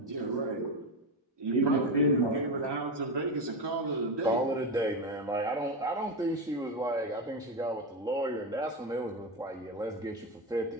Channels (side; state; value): both; normal; correlation 0.14